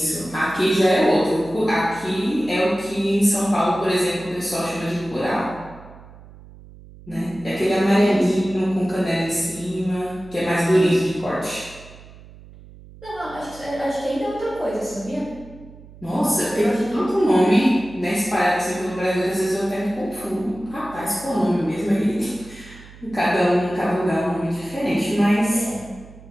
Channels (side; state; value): right; noise; hum, 20 dB below the sound